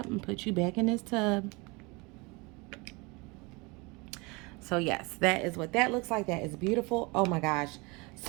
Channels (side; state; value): left; quieter; 26.8 dB